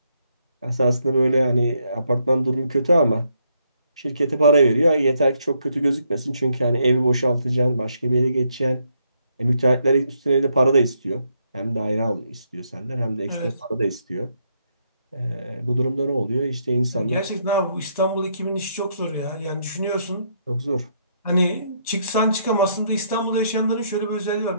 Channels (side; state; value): both; inverted; correlation -0.75